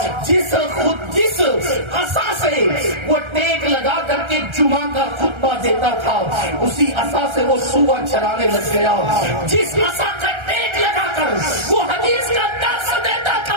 جس عصا سے وہ ٹیک لگا کر کے جمعہ کا خطبہ دیتا تھا، اسی عصا سے وہ سور چلانے لگ گیا۔ جس عصا کا ٹیک لگا کر وہ حدیث کا درس دیتا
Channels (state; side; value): late; left; 1.3 ms